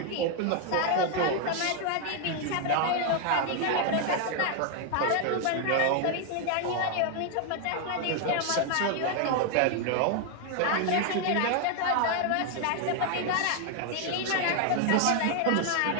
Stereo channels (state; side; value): different; both; correlation 0.00